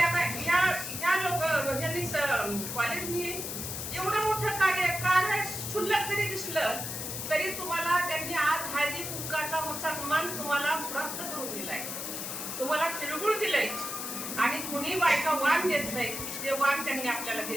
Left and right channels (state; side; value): noise; left; hiss, 5 dB below the sound